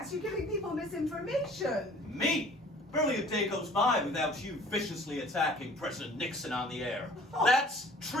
You're giving people misinformation. Me? Barely a day goes by without you viciously attacking President Nixon on the air. That's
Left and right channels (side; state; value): both; normal; correlation 0.51